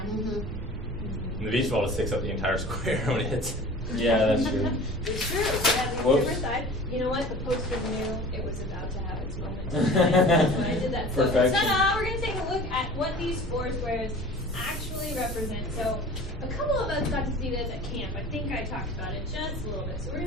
and the beach ball just takes up the entire square when it hits. Yeah, that's true. It's true. It has a Whoops. different side. You know what? The poster knew it was about to have its moment. That's when I did that. So, Perfection. ta-da! We're going to take a look at what these four squares actually represent. So, a couple of us got to see this at camp. I think I talked about it just a little bit. So, we're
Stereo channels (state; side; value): normal; both; correlation 0.42